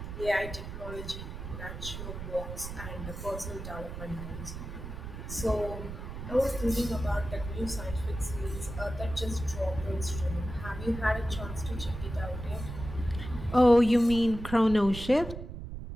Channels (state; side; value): noise; right; rumble, 8 dB below the sound